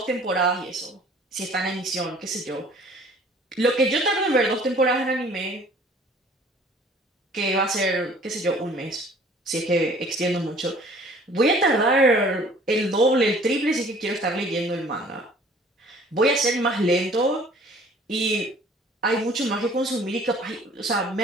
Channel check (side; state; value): both; normal; correlation 0.52